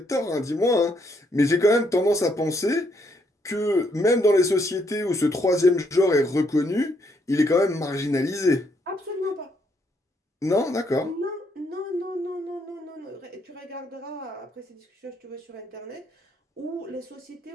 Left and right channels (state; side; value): normal; both; correlation 0.73